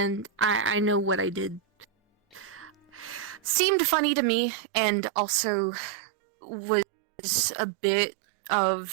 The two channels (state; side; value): drops out; left; at 3.6 s